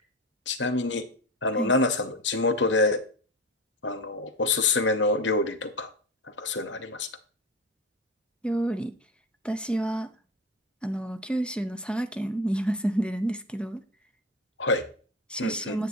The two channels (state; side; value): normal; both; correlation 0.23